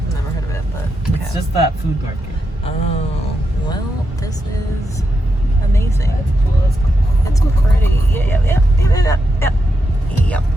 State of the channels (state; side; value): normal; both; correlation 0.85